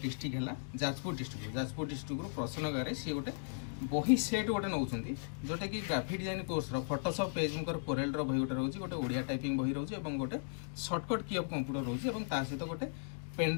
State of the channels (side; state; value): right; silent; digital silence